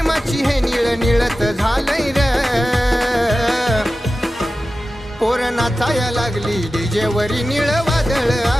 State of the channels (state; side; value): normal; both; correlation 0.94